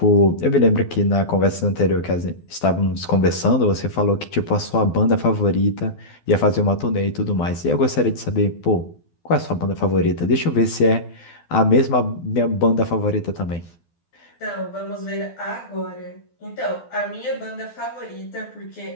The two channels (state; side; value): late; right; 12 ms